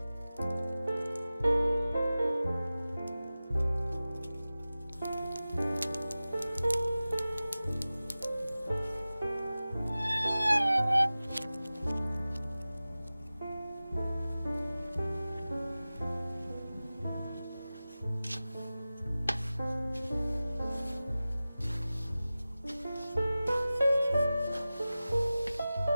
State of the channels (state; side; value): inverted; both; correlation -0.96